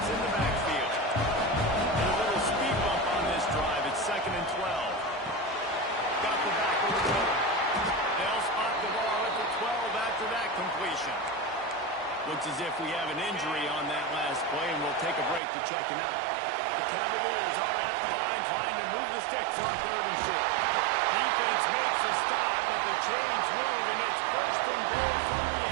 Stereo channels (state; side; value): drops out; left; at 15.4 s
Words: in the backfield. And a little speed bump on this drive. It's 2nd and 12. Got the back of the middle. They'll spot the ball at the 12 after that completion. Looks as if we have an injury on that last play, and we'll take a break to check him out. The Cavaliers are at the line trying to move the sticks on 3rd and short. Defense makes a stop, but the chains move, and it's 1st and goal from the